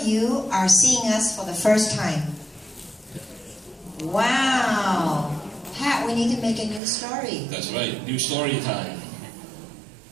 you are seeing us for the first time? Wow. Pat, we need to make a new story. That's right. New story time.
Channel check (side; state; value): left; drops out; at 6.8 s